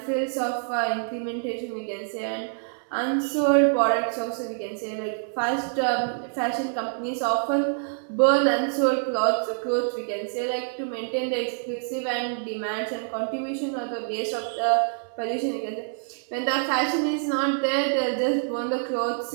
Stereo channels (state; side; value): silent; left; 60 dB below the other